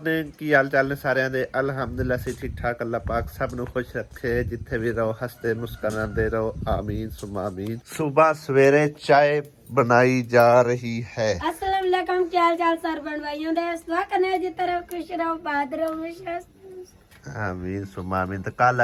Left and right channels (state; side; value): identical; both; correlation 1.00